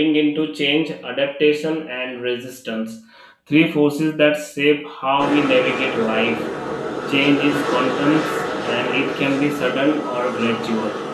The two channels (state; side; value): identical; both; correlation 1.00